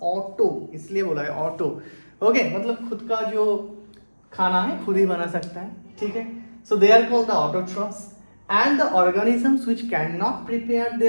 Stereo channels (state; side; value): inverted; both; correlation -1.00